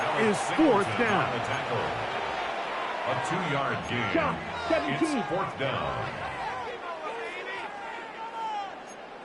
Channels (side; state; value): both; identical; correlation 1.00